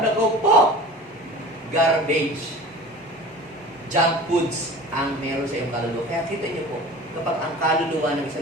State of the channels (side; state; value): both; normal; correlation 0.39